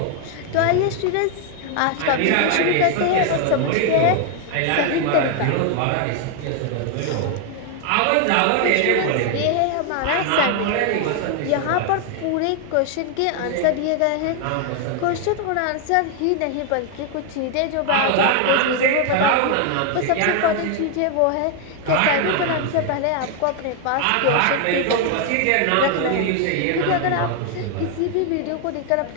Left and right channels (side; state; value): both; different; correlation 0.00